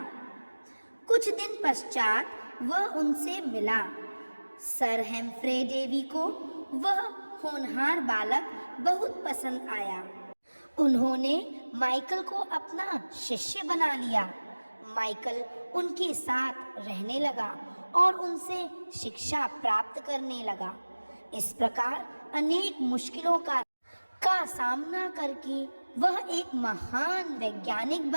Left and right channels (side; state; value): both; inverted; correlation -1.00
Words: कुछ दिन पश्चात वह उनसे मिला। सर हेम्फ्रे डेवी को वह होनहार बालक बहुत पसंद आया। उन्होंने माइकल को अपना शिष्य बना लिया। माइकल उनके साथ रहने लगा और उनसे शिक्षा प्राप्त करने लगा। इस प्रकार अनेक मुश्किलों का सामना करके वह एक महान वैज्ञानिक